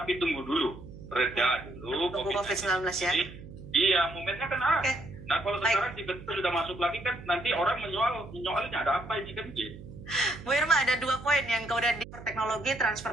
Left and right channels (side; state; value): right; noise; hum, 15 dB below the sound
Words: tunggu dulu. Reda dulu COVID-19 ya. Iya, momennya kan ada. Okay. Nah, kalau sekarang tiba-tiba sudah masuk lagi kan nanti orang menyoalnya ada apa ini kan gitu. Bu Irma, ada 2 poin yang kemudian di teknologi transfer